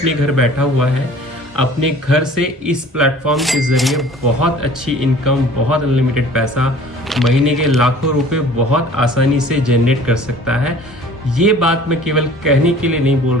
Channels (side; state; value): both; normal; correlation 0.48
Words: घर बैठा हुआ है अपने घर से इस प्लेटफॉर्म के ज़रिए बहुत अच्छी इनकम, बहुत अनलिमिटेड पैसा, महीने के लाखों रुपए बहुत आसानी से जनरेट कर सकता है। ये बात मैं केवल कहने के लिए नहीं बोल